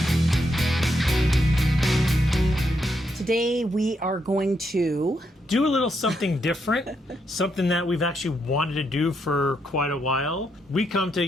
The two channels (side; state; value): both; normal; correlation 0.79